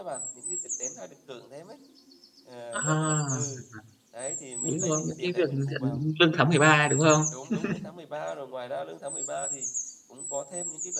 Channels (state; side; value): identical; both; correlation 1.00